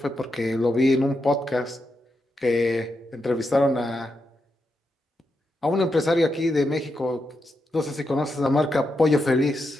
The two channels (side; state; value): both; normal; correlation 0.85